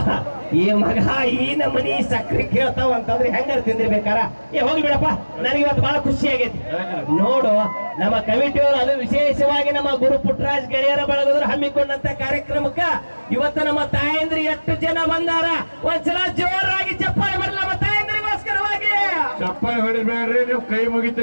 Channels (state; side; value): inverted; both; correlation -1.00